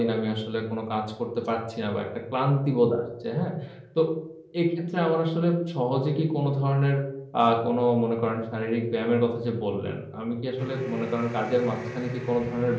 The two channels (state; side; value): identical; both; correlation 1.00